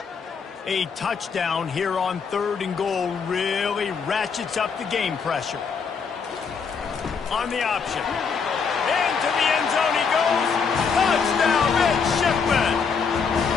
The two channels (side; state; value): right; quieter; 5.8 dB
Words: A touchdown here on 3rd and goal really ratchets up the game pressure. On the option. Into the end zone he goes. Touchdown, midshipman.